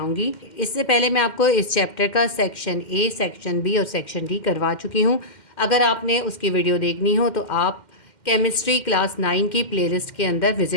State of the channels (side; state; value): right; late; 2.1 ms